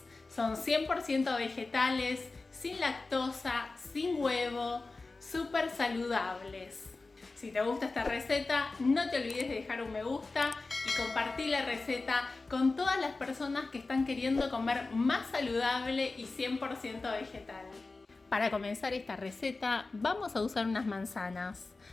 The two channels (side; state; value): right; quieter; 3.6 dB